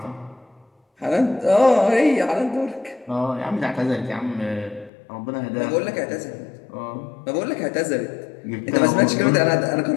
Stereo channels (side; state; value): right; drops out; at 4.9 s